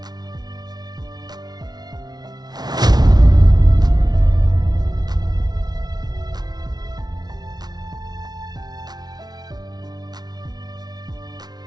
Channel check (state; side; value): late; left; 0.19 ms